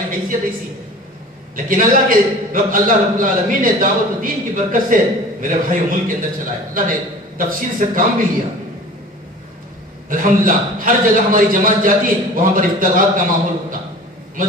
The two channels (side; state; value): both; normal; correlation 0.42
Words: حیثیت ایسی ہے. لیکن اللہ رب العالمین نے دعوت و دین کی برکت سے میرے بھائیوں ملک کے اندر چلائے. اللہ نے تفصیل سے کام بھی لیا. الحمدللہ ہر جگہ ہماری جماعت جاتی وہاں پر افتخار کا ماحول ہوتا.